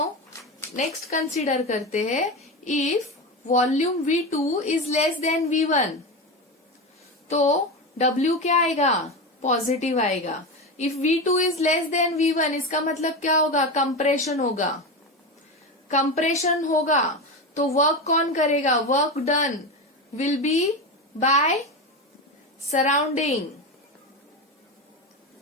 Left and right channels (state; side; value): normal; both; correlation 0.19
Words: next consider करते हैं. If volume V2 is less than V1 तो W क्या आएगा? पॉजिटिव आएगा. If V2 is less than V1 इसका मतलब क्या होगा? कंप्रेशन होगा. कंप्रेशन होगा तो वर्क कौन करेगा? Work done will be bye surrounding